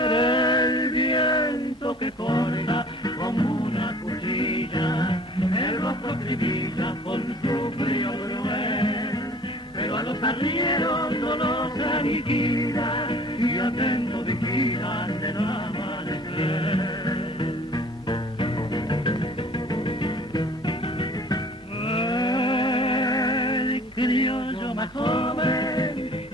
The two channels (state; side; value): normal; both; correlation 0.50